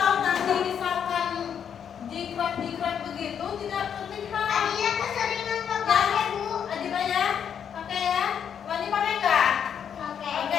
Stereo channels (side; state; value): right; quieter; 8.1 dB